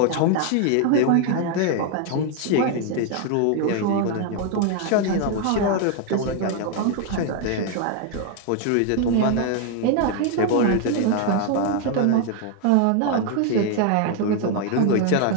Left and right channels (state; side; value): different; both; correlation 0.01